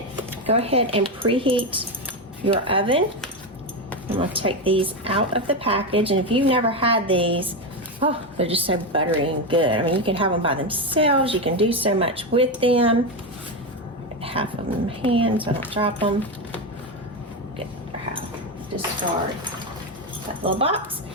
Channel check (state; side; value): normal; both; correlation 0.12